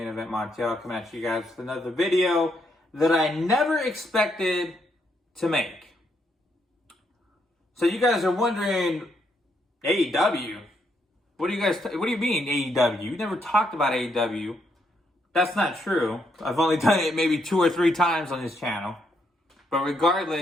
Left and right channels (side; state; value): both; normal; correlation 0.76